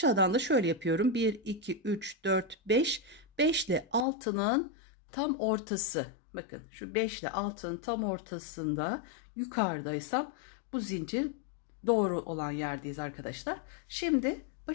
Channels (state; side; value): drops out; right; at 4.0 s